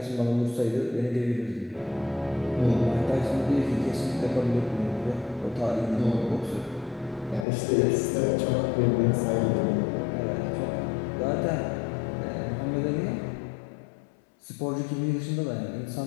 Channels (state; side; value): drops out; right; at 7.5 s